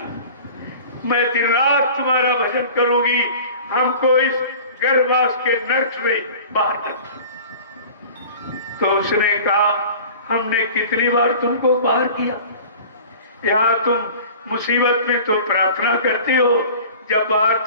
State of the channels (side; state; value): both; inverted; correlation -0.42